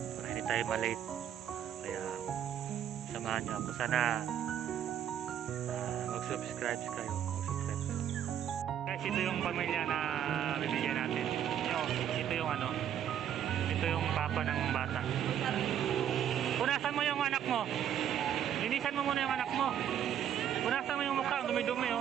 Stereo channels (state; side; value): quieter; left; 9.9 dB